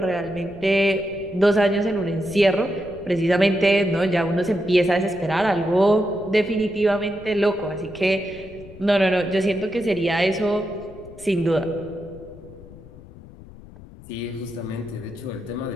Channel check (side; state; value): left; noise; rumble, 19 dB below the sound